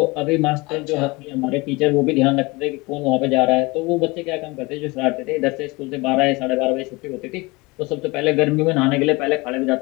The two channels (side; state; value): right; quieter; 24.3 dB